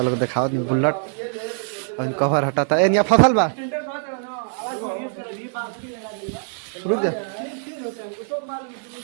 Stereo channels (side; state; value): left; silent; digital silence